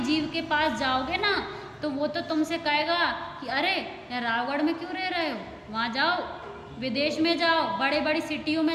जीव के पास जाओगे ना तो वो तो तुमसे कहेगा कि अरे यार रावगढ़ में क्यों रह रहे हो, वहाँ जाओ, विदेश में जाओ, बड़े बड़ी सिटियों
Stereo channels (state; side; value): identical; both; correlation 1.00